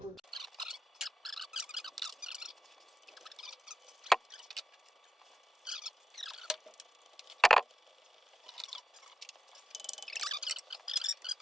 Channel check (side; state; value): both; normal; correlation 0.88